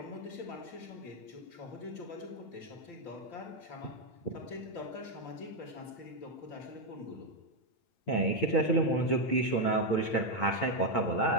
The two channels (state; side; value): late; right; 8.9 ms